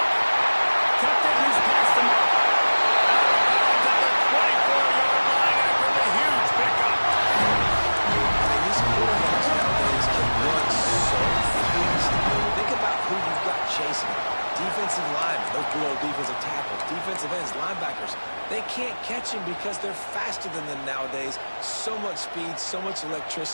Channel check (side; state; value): both; inverted; correlation -1.00